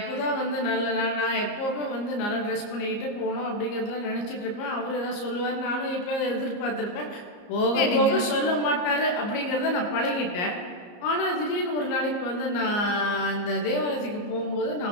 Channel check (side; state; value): right; late; 34 ms